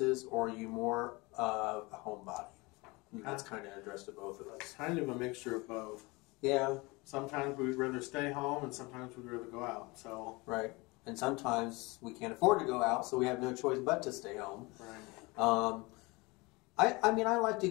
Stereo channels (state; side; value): quieter; right; 24.8 dB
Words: or are you more of a homebody? That's kind of addressed to both of us. Kind of a mixture of both. Yeah. Sometimes we'd rather stay home, and sometimes we'd rather go out. So. Right. And sometimes we can't afford to go out, so we have no choice but to stay home. Right. I mean, I like to